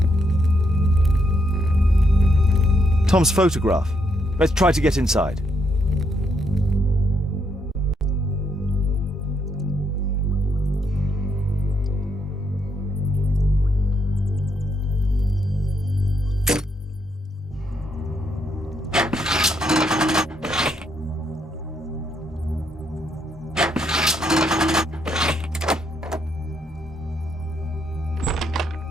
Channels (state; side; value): normal; both; correlation 0.76